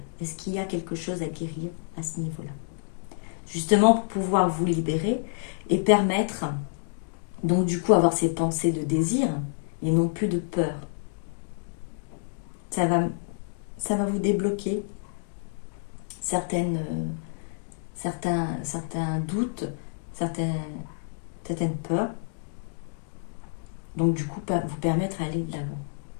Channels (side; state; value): right; silent; digital silence